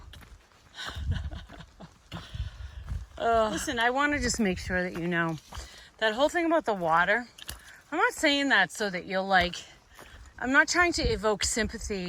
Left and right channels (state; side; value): identical; both; correlation 1.00